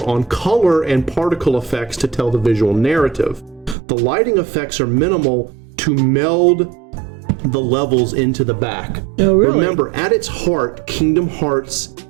on color and particle effects to tell the visual narrative. The lighting effects are minimal to meld the levels into the back. Oh, really? Remember, at its heart, Kingdom Hearts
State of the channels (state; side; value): drops out; left; at 3.8 s